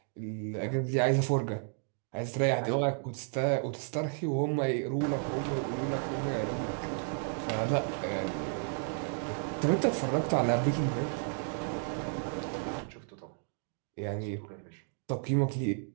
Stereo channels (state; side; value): silent; left; 56 dB below the other